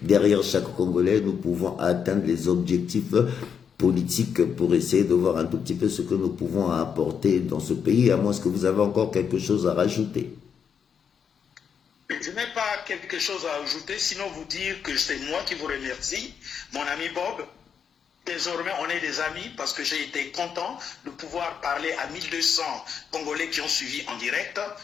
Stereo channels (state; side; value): quieter; right; 7.2 dB